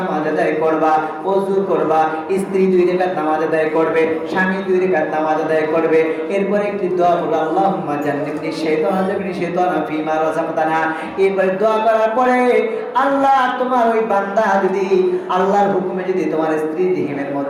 আদায় করবা, ওযু করবা, স্ত্রী 2 রাকাত নামাজ আদায় করবে, স্বামী 2 রাকাত নামাজ আদায় করবে। এরপরে একটি দোয়া হলো, আল্লাহুম্মা জান্নিবনি শাইতানা জান্নিবনি শাইতানা ফীমা রাযাকতানা। এরপরে দোয়া করার পরে, আল্লাহ, তোমার ওই বান্দা যদি আল্লাহর হুকুমে যদি তোমার স্ত্রীর রহিমের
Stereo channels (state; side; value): identical; both; correlation 1.00